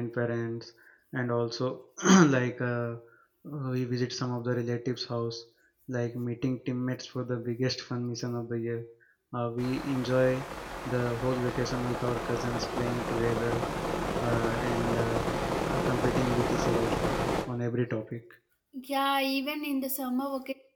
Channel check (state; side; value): identical; both; correlation 1.00